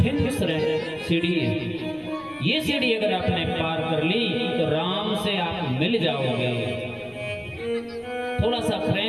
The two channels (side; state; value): both; identical; correlation 1.00